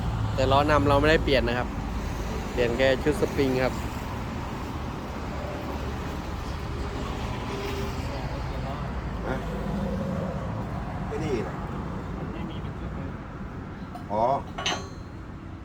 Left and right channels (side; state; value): both; identical; correlation 1.00